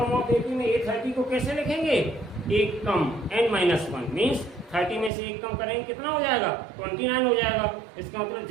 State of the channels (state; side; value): drops out; left; at 5.1 s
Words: ऑफ एपी में A30 को कैसे लिखेंगे? एक कम, n-1 मीन्स 30 में से एक कम करेंगे कितना हो जाएगा? 29 हो जाएगा। इसका मतलब